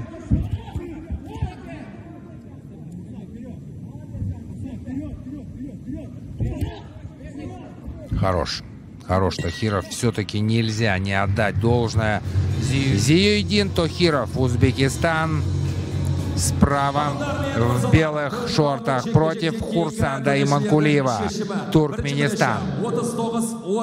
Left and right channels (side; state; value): both; identical; correlation 1.00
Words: Хорош Тохиров. Все-таки нельзя не отдать должное. Зиюдин Тохиров, Узбекистан. Справа в белых шортах против Хурсанда Иманкулиева, Туркменистан.